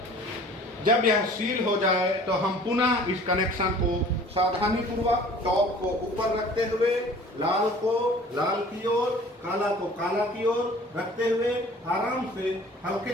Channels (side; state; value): both; normal; correlation 0.48